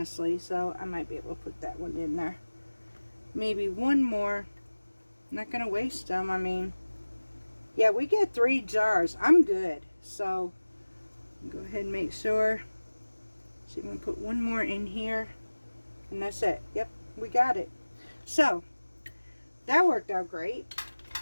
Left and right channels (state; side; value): inverted; both; correlation -1.00